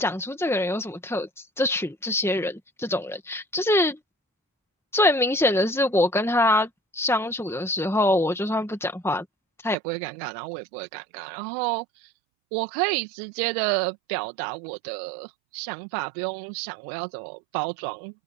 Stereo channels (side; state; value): left; drops out; at 9.8 s